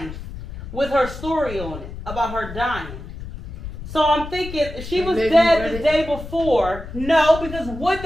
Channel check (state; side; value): noise; left; rumble, 10 dB below the sound